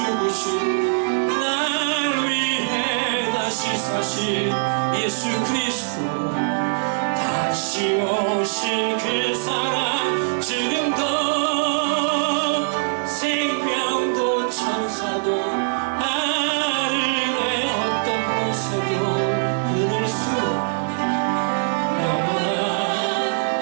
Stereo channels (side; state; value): left; silent; 64 dB below the other